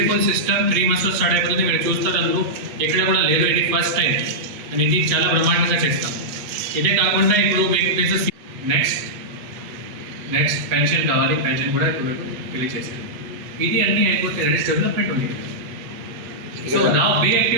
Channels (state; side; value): late; left; 8.3 ms